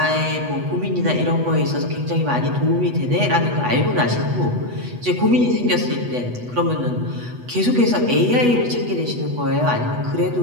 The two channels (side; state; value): left; late; 8.2 ms